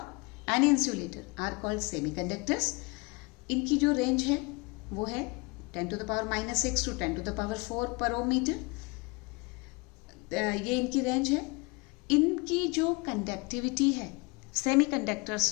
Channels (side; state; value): right; quieter; 28.0 dB